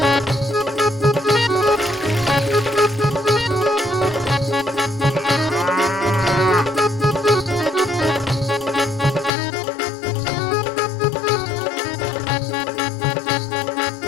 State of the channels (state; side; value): drops out; right; at 9.3 s